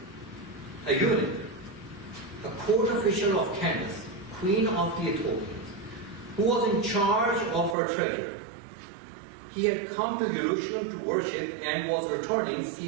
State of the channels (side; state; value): left; drops out; at 7.8 s